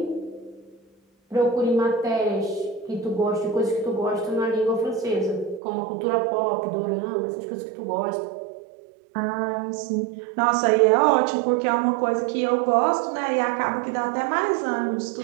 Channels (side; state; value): left; drops out; at 5.6 s